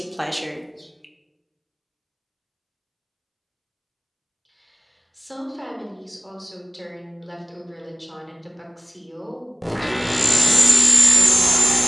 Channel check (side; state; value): both; identical; correlation 1.00